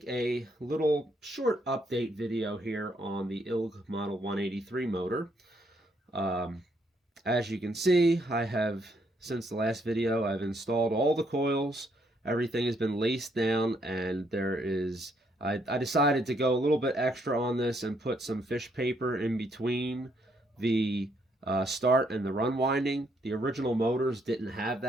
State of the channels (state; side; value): normal; both; correlation 0.72